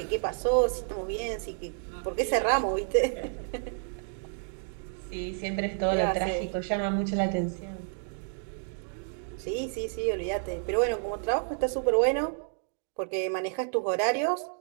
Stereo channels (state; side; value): silent; left; 58 dB below the other